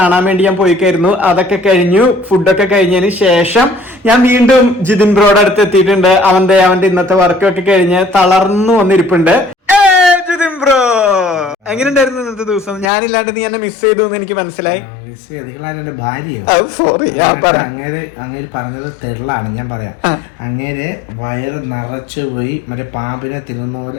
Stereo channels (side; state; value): right; drops out; at 12.9 s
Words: വേണ്ടി ഞാൻ പോയിക്കായിരുന്നു. അതൊക്കെ കഴിഞ്ഞു. ഫുഡൊക്കെ കഴിഞ്ഞതിന് ശേഷം ഞാൻ വീണ്ടും ജിതിൻ ബ്രോയുടെ അടുത്ത് എത്തിയിട്ടുണ്ട്. അവന്റെ ഇന്നത്തെ വർക്കൊക്കെ കഴിഞ്ഞ് തളർന്നു വന്നിരിപ്പുണ്ട്. ജിതിൻ ബ്രോ, എങ്ങനെയുണ്ടായിരുന്നു ഇന്നത്തെ ദിവസം? ഞാനില്ലാണ്ട് നീ എന്നെ മിസ് ചെയ്തു എന്ന് എനിക്ക് മനസ്സിലായി. സോറി, അങ്ങേര് പറഞ്ഞത് തെള്ളാണ്. ഞാൻ പറയാം, അങ്ങേര് വയറ് നിറച്ചു പോയി മറ്റേ പാമ്പിനെ തിന്നുന്ന